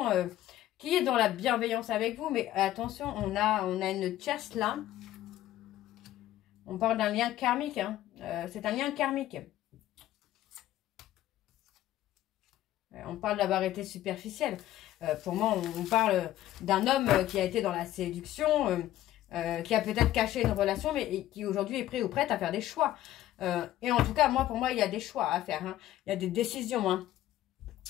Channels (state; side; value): quieter; right; 13.8 dB